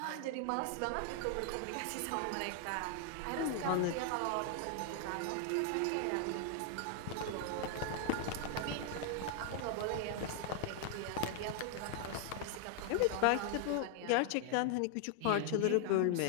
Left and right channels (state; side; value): different; both; correlation 0.00